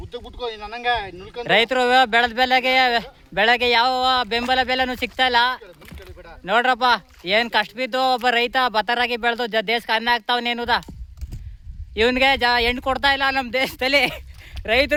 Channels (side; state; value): both; identical; correlation 1.00